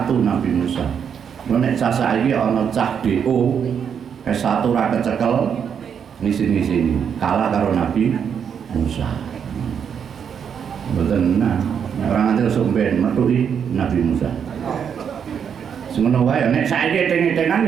Nabi Musa. Lho nek cah saiki ana cah DO S1 ora kecekel ngisi-ngisi kalah karo Nabi Musa. Betul, nah orang nanti langsung ben metuhi Nabi Musa. Semono wae nek saiki eteng-etengan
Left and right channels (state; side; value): quieter; left; 7.5 dB